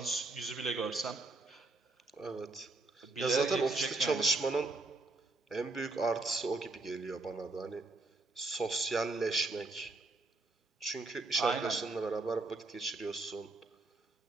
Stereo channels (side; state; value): left; quieter; 3.2 dB